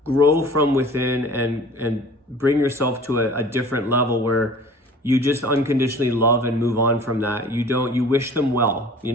Grow from within and bring yourself to a different level where you just unconditionally love and move on from that. You wish them well,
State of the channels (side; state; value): both; normal; correlation 0.45